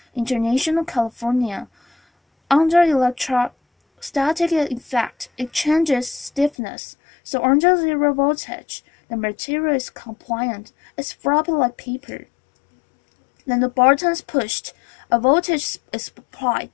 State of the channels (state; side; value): drops out; right; at 6.5 s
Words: International California. Under electrostatic effect, it changes stiffness, so under zero voltage, the material is compliant. It's floppy like paper. Then the button is pushed, a voltage is